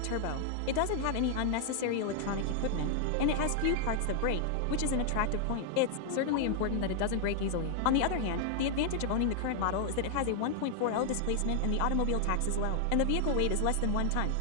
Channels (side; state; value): both; different; correlation 0.00